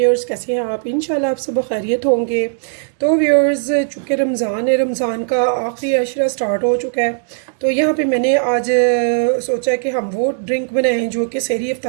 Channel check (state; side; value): silent; left; digital silence